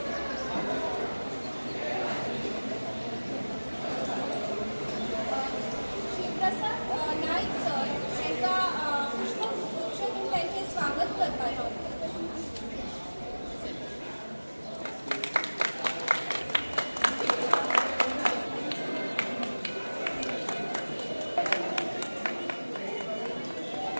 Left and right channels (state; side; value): inverted; both; correlation -1.00